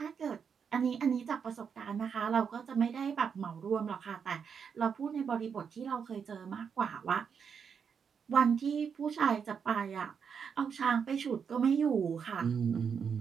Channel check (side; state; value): left; quieter; 6.7 dB